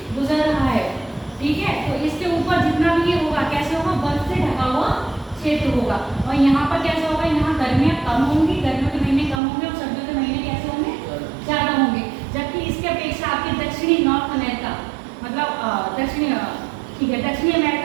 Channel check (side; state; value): left; drops out; at 9.4 s